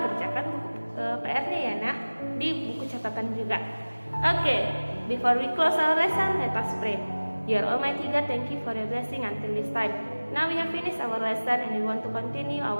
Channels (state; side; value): inverted; both; correlation -1.00